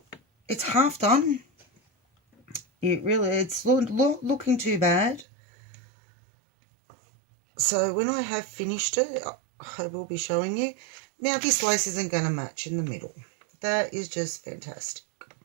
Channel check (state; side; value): drops out; left; at 5.2 s